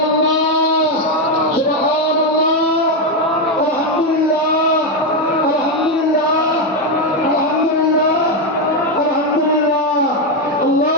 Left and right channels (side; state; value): both; normal; correlation 0.06